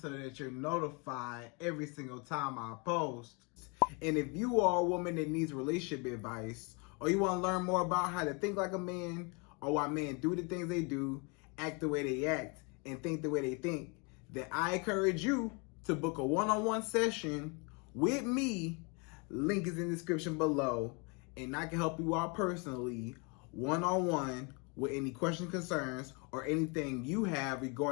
that you're notified every single time I post. And if you are a woman that needs relationship advice, or you want to learn more about how to think like a man, or why men do the things they do, act the way they act, and think the way they think, then I encourage you to book a one-on-one session with me. Link is in the description below, and I can help you out personally, one-on-one, with any questions, concerns, or anything you have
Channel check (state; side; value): quieter; right; 31.8 dB